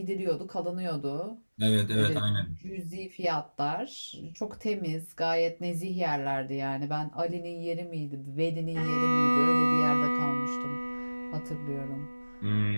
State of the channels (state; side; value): inverted; both; correlation -1.00